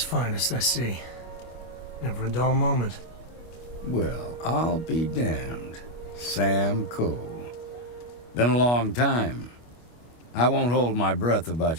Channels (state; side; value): late; right; 25 ms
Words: I see. Never a dull moment. Well, I'll be damned. Sam Coe. Been a long time. I won't hold my breath